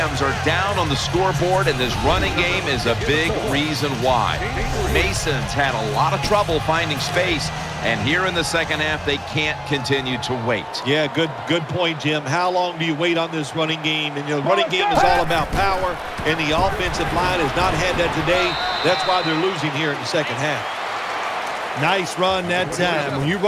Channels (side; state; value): both; identical; correlation 1.00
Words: are down on the scoreboard, and this running game is a big reason why. Mason's had a lot of trouble finding space, and here in the second half, they can't continue to wait. Yeah, good point, Jim. How long do you wait on this running game? And the running game is all about power, and the offensive line has not had that today. That's why they're losing here in the second half. Nice run that time. When you